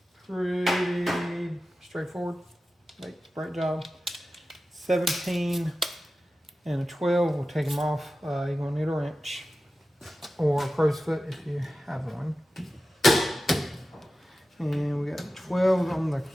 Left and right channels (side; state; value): both; normal; correlation 0.94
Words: Pretty straightforward. Like, brake job. 17 and a 12. We'll take them off. You're going to need a wrench. Or a crow's foot if you have one. And we got 12 on the